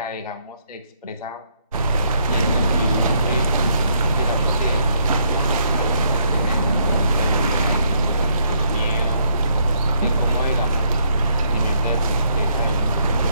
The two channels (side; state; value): both; inverted; correlation -0.71